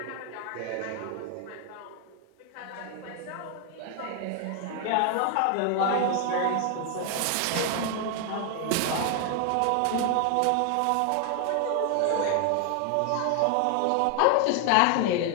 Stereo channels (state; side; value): different; both; correlation 0.00